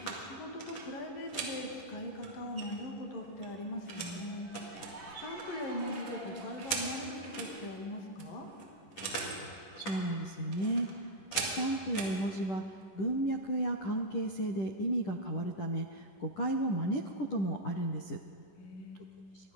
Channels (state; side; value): late; right; 11 ms